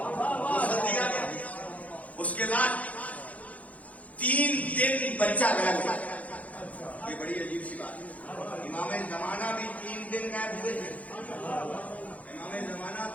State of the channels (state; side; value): late; right; 0.069 ms